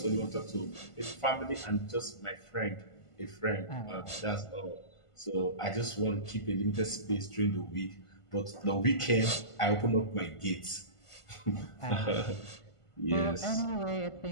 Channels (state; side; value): late; right; 1.5 ms